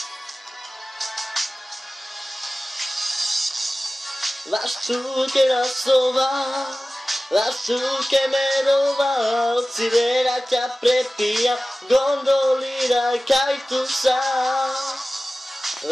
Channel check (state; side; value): normal; both; correlation 0.97